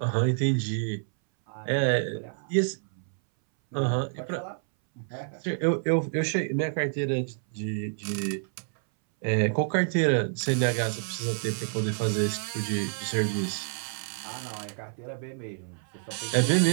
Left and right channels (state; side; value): silent; left; 59 dB below the other